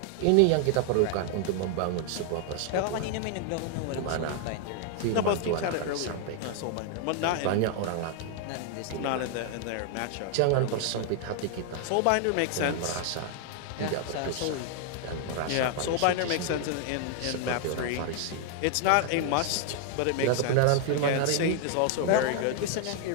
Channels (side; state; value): both; different; correlation 0.00